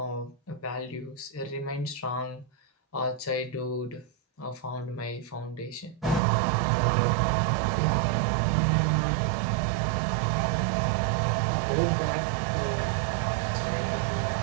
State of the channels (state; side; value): drops out; left; at 6.2 s